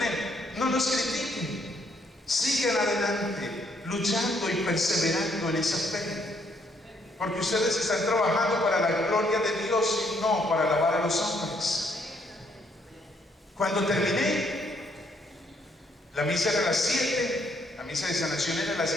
no los critiquen. Sigan adelante, luchando y perseverando en esa fe. Porque ustedes están trabajando para la gloria de Dios y no para alabar a los hombres. Cuando terminé, la misa era a las 7. La misa de sanación era a las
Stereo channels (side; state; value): both; normal; correlation 0.70